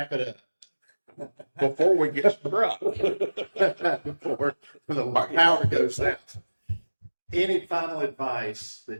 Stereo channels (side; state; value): both; inverted; correlation -1.00